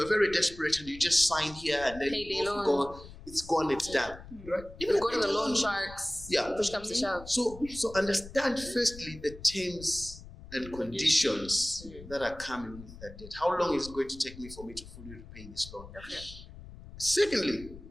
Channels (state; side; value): noise; left; rumble, 16 dB below the sound